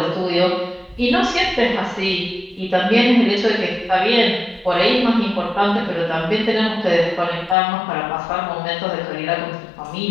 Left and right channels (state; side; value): drops out; right; at 7.6 s